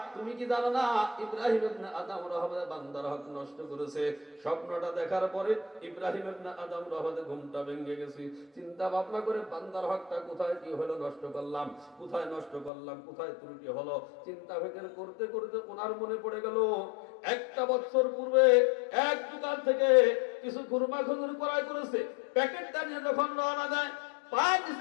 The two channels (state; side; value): drops out; right; at 12.7 s